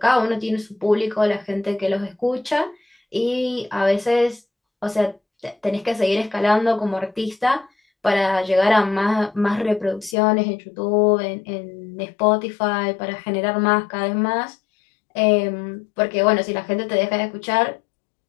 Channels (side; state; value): right; drops out; at 10.2 s